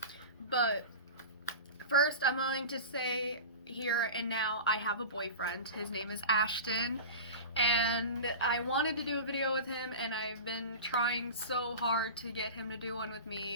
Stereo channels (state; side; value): inverted; both; correlation -0.31